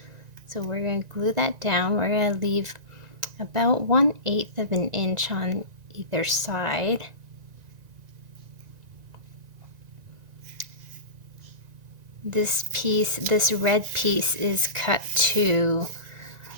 So we're going to glue that down. We're going to leave about 1/8 of an inch on either side. This piece, this red piece, is cut to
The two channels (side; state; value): left; late; 1.9 ms